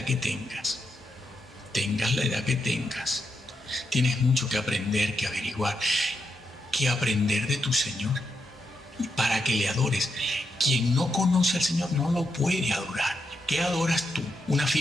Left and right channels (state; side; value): normal; both; correlation 0.83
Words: que tengas. Tengas la edad que tengas. Tienes mucho que aprender, que averiguar, que aprender de tu Señor para que le adores. Quien no conoce al Señor no lo puede adorar. ¿Qué adoras tú? Una